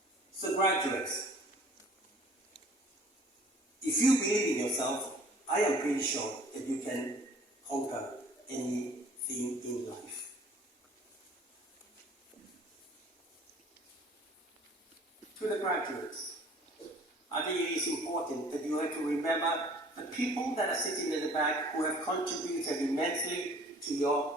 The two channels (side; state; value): both; normal; correlation 0.52